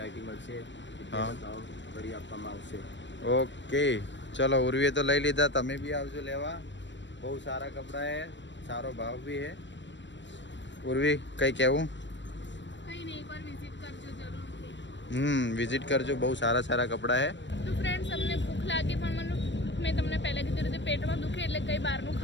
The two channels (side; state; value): right; late; 0.53 ms